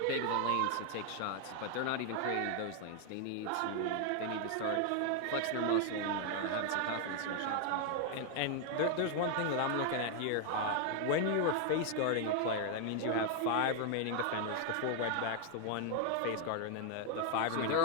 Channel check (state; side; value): different; both; correlation 0.00